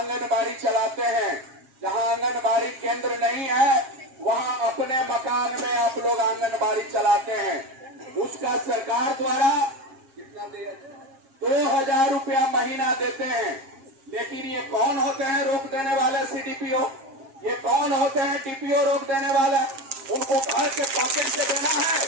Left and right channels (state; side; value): late; left; 7.4 ms